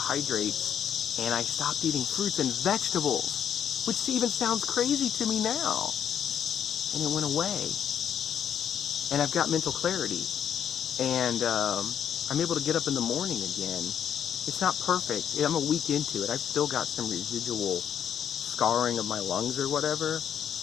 and I stopped eating fruits and vegetables, which even sounds crazy to me now. And it went away. And I've got mental clarity. And, I'm able to get up in the morning again. It's not perfect. I'm a week into it. I've still got some residual scarring of my lungs or whatever.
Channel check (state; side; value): quieter; right; 9.0 dB